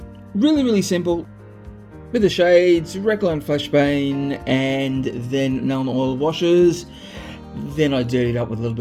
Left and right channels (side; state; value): both; identical; correlation 1.00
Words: Really simple. With the shades, Recline Flashbane, and then Nuln Oil washes. Then I dirtied up with a little